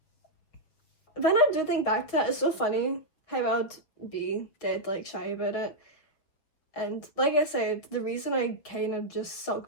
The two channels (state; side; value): late; right; 6.8 ms